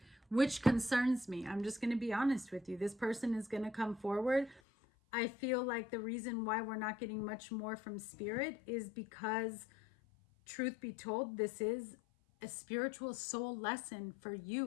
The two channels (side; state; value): right; drops out; at 4.6 s